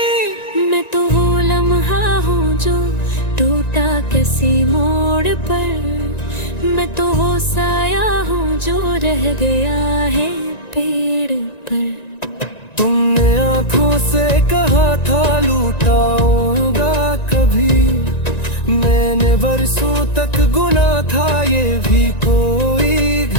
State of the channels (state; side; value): late; right; 1.9 ms